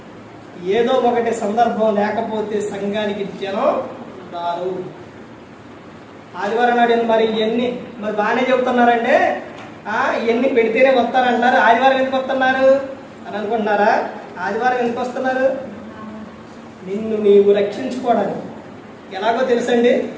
ఏదో ఒకటి సందర్భం లేకపోతే సంఘానికి జనం రారు. ఆదివారం నాడు మరి ఇవన్నీ బాగానే చెబుతున్నారంటే ఇవన్నీ పెడితేనే వస్తారంటున్నారు. ఆదివారం ఎందుకు వస్తున్నారు అని అనుకుంటున్నారా? ఆదివారం ఎందుకు వస్తున్నారు? నిన్ను నీవు రక్షించుకోవడానికి. ఎలాగో తెలుసండి?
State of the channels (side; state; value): both; identical; correlation 1.00